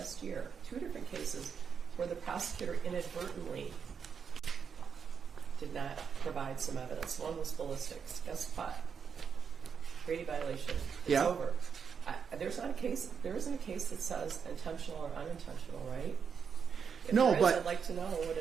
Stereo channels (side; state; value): left; quieter; 6.6 dB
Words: year, 2 different cases, where the prosecutor inadvertently did not provide some evidence. One was ballistics. Guess what? Brady violation. It's over. There isn't a case that says intentional or unintentional, right? If there is, I'd like to know what